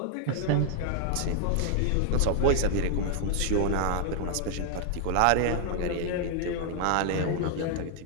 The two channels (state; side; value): different; both; correlation 0.00